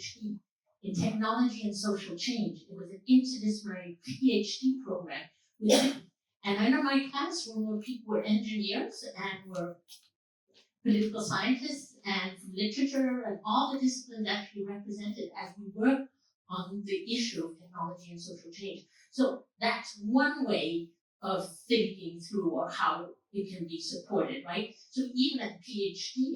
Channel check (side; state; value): both; identical; correlation 1.00